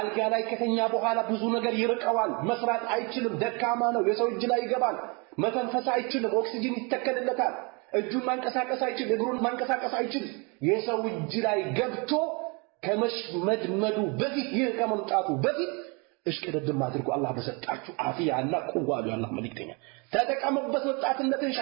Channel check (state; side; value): quieter; left; 31.0 dB